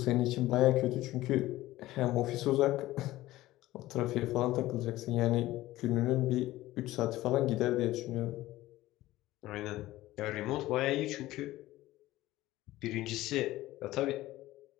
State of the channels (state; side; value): quieter; right; 16.6 dB